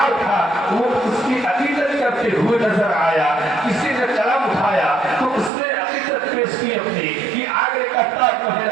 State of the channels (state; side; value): drops out; left; at 5.5 s